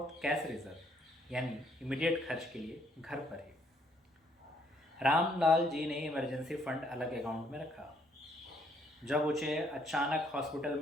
कैश रिजर्व यानी इमीडिएट खर्च के लिए घर पर ही। रामलाल जी ने इमरजेंसी फंड अलग अकाउंट में रखा। जब उसे अचानक हॉस्पिटल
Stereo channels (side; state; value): both; normal; correlation 0.68